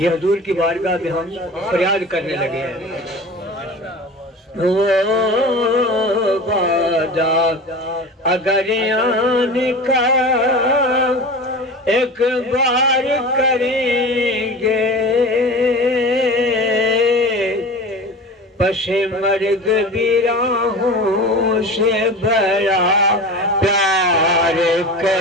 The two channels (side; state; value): both; normal; correlation 0.33